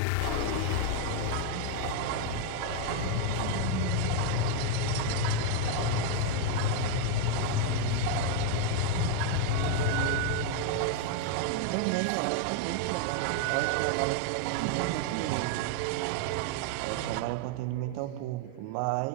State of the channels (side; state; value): both; different; correlation 0.01